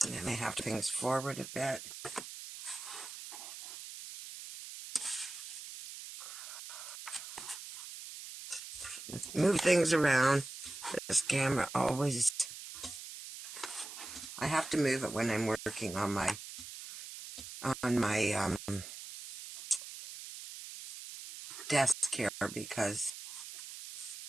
I may have to things forward a bit. Move things around. This camera always... I have to move it when I'm working on my desk here, because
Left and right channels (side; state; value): right; noise; hiss, 11 dB below the sound